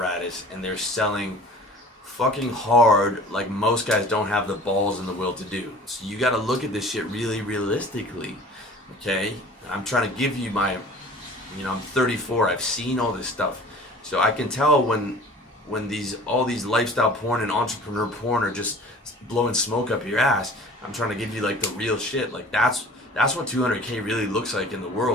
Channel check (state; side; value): normal; both; correlation 0.45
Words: and they're selling fucking hard, like most guys don't have the balls and the will to do. So you got to look at this shit really realistically. Okay, I'm trying to give you my, I'm 34. I've seen all this stuff, so I can tell when these all these lifestyle porn and entrepreneur porn are just blowing smoke up your ass. I'm trying to give you like the real shit. Like that's what 200K really looks like in the